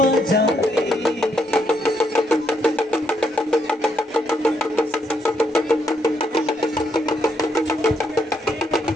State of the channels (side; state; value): both; normal; correlation 0.75